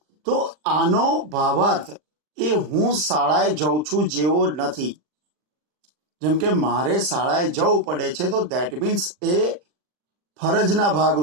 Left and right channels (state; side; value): late; left; 39 ms